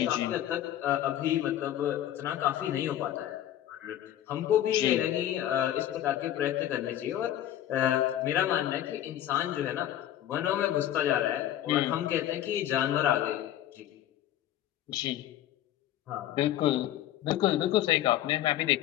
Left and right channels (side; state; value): right; quieter; 12.1 dB